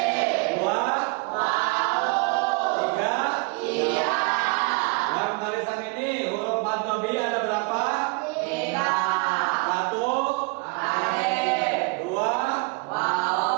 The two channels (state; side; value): quieter; left; 30.4 dB